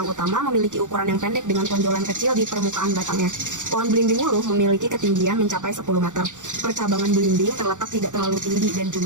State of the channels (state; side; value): late; left; 0.86 ms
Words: utama memiliki ukuran yang pendek dengan tonjolan kecil di permukaan batangnya. Pohon belimbing wulu memiliki ketinggian mencapai 10 meter. Percabangan belimbing terletak tidak terlalu tinggi dan